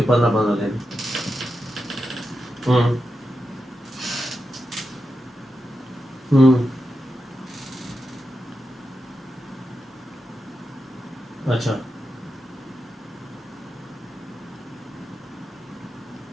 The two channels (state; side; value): normal; both; correlation 0.89